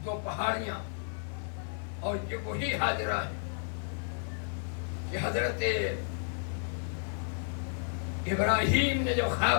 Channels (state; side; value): silent; right; digital silence